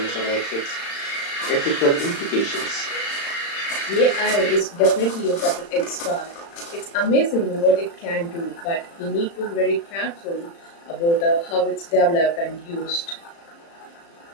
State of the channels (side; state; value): right; late; 35 ms